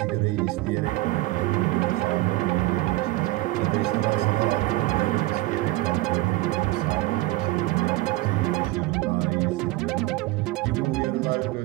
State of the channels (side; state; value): left; quieter; 19.0 dB